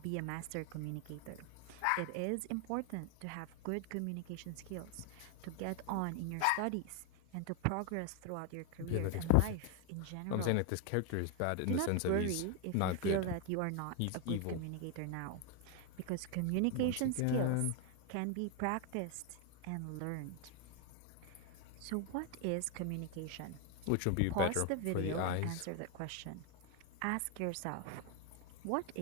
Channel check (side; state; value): both; different; correlation 0.01